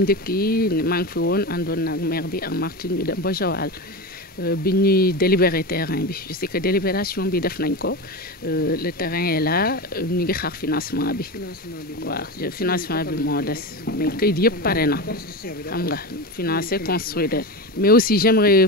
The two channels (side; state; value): both; normal; correlation 0.21